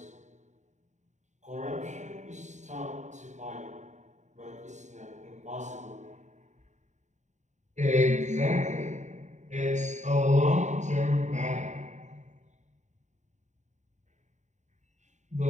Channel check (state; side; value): late; left; 0.34 ms